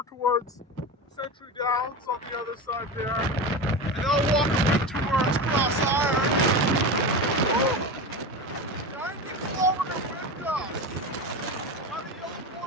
towards Century Downs on the other side there. And now walking towards Cross Iron. Woo! 90 kilometer wind gusts. Had a yellow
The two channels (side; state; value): both; normal; correlation 0.24